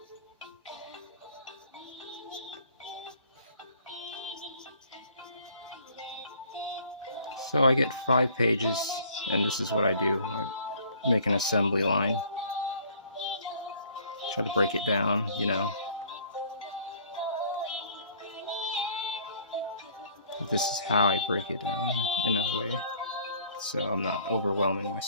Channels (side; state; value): both; inverted; correlation -0.55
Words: So I get 5 pages, and this is what I do. I make an assembly line. Try to break it down, you know. This is how I break it down in a way, so I'm not overwhelming